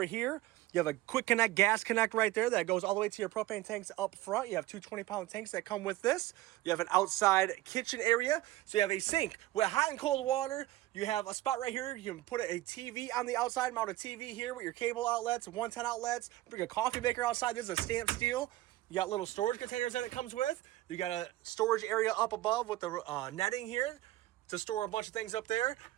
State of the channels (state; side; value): quieter; left; 16.6 dB